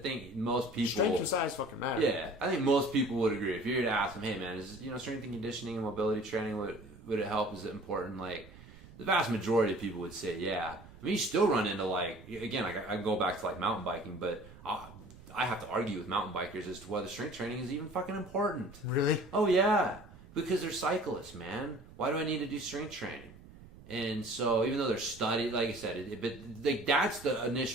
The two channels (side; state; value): right; noise; rumble, 19 dB below the sound